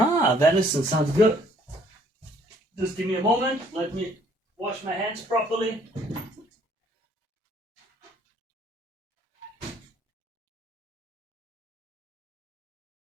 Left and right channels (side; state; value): both; normal; correlation 0.62